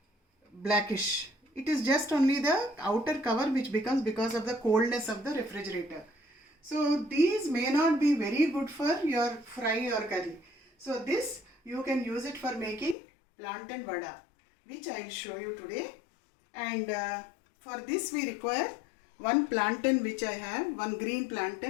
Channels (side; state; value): right; drops out; at 13.0 s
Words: blackish. It is just only the outer cover which becomes because of the coldness of the refrigerator. So these may not be very good for your fry or curry. So this you can use it for making plantain vada, which I will show you today. And for this we require one plantain which I have, one green